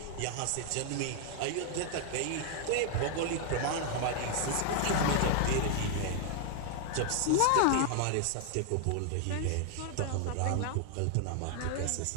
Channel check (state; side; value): different; both; correlation 0.00